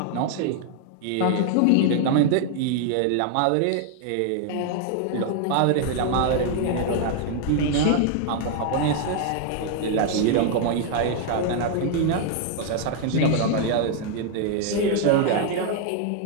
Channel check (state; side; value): different; both; correlation 0.00